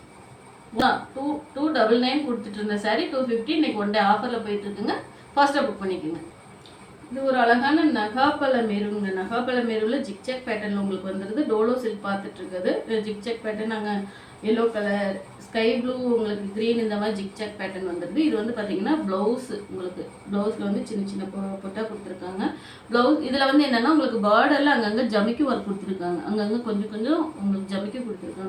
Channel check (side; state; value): both; identical; correlation 1.00